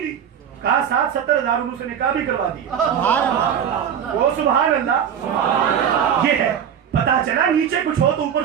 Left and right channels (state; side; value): quieter; left; 8.6 dB